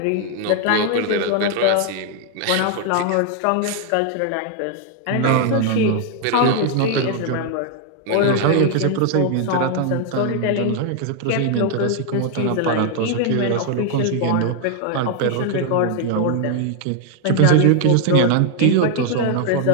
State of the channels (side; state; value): both; different; correlation 0.00